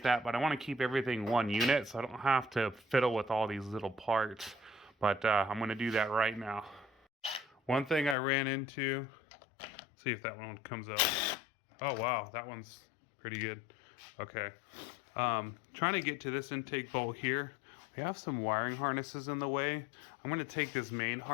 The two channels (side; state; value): right; drops out; at 8.2 s